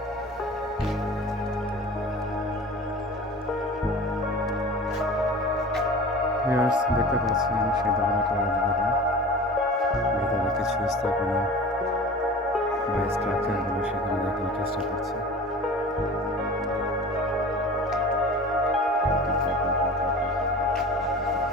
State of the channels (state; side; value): normal; both; correlation 0.38